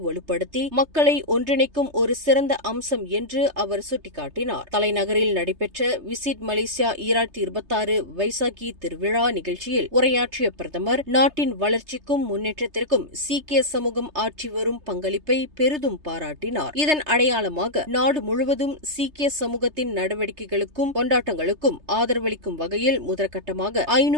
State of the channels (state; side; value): late; left; 3.3 ms